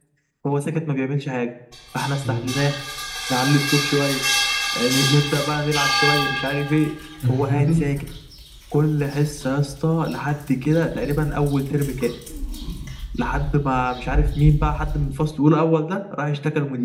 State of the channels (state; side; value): identical; both; correlation 1.00